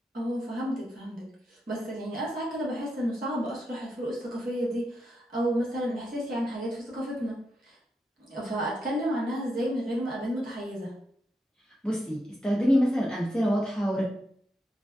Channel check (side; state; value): both; normal; correlation 0.84